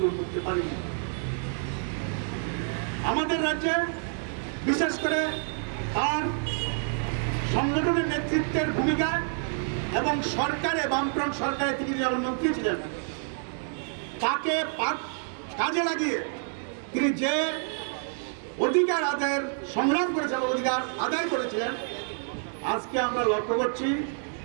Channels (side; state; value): left; silent; 55 dB below the other